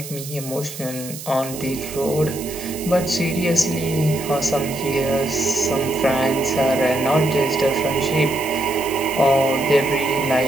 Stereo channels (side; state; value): right; noise; hiss, 12 dB below the sound